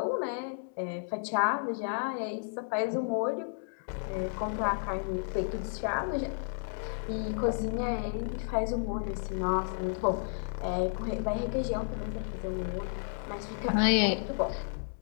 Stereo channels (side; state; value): right; silent; digital silence